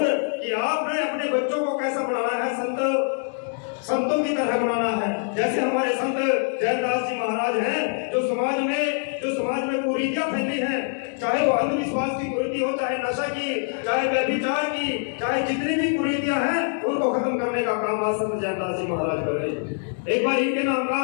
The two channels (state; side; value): silent; right; 55 dB below the other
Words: कि आपने अपने बच्चों को कैसा बनाना है, संतों की तरह बनाना है। जैसे हमारे संत जैनदास जी महाराज हैं जो समाज में कुरीतियां फैली हैं, चाहे वो अंधविश्वास की कुरीति हो, चाहे नशा की, चाहे व्यभिचार की, चाहे जितनी भी कुरीतियां हैं उनको खत्म करने का काम आज संत जैनदास जी महाराज कर रहे हैं। एक बार इनके नाम का